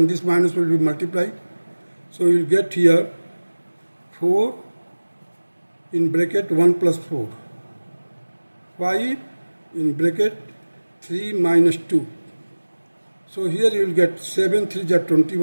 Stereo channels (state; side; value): inverted; both; correlation -1.00